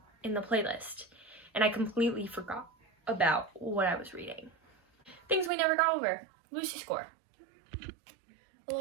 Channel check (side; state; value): left; drops out; at 5.5 s